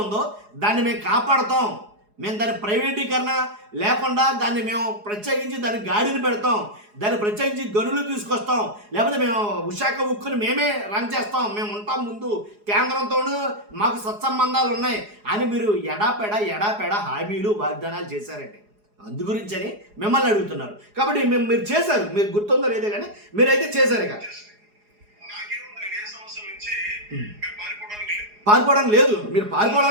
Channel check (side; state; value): left; late; 4.8 ms